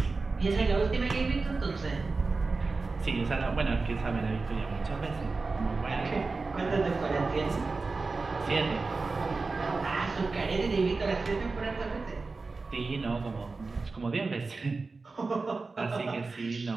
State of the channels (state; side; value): quieter; left; 3.9 dB